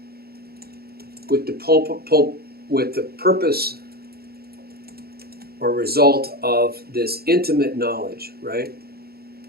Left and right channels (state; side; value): late; left; 0.45 ms